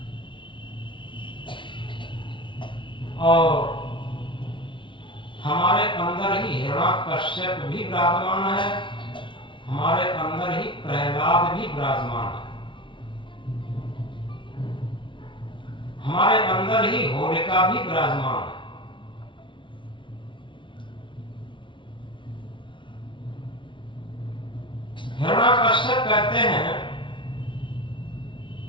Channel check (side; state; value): right; late; 0.24 ms